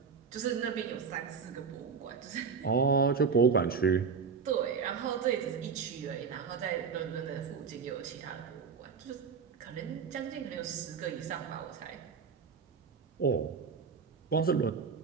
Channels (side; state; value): left; quieter; 5.9 dB